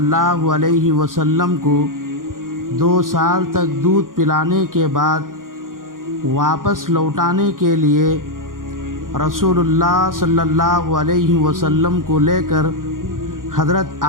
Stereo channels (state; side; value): late; left; 0.90 ms